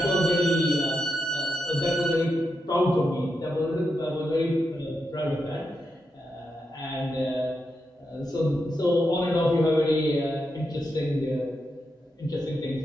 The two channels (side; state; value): both; normal; correlation 0.85